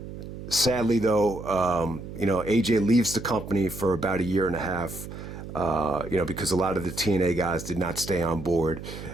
Sadly, though, AJ leaves the company for about 1.5 years, because a lot of the TNA guys did not stay on board.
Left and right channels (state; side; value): noise; right; hum, 11 dB below the sound